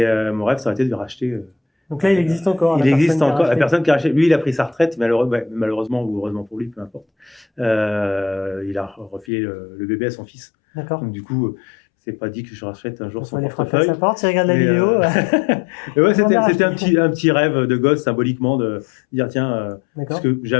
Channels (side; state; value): right; drops out; at 9.2 s